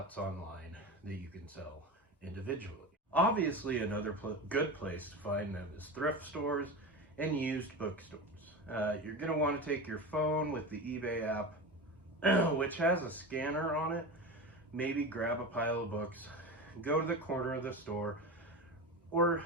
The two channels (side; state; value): both; normal; correlation 0.25